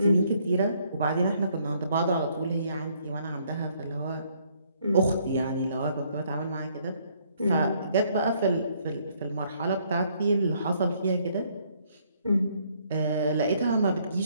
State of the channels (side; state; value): both; inverted; correlation -0.67